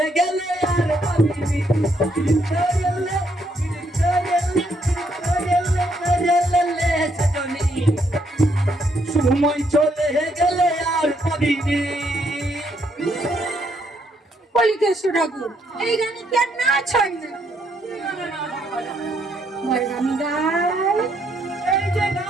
গেলে আর পাবিনি করেলে সজনী সময় চলে গেলে আর পাবিনি। বলি কেষ্ট ঠাকুর, এই গানে কি আর নাচ হয় না? আমি গাই। এই যে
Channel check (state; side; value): normal; both; correlation 0.73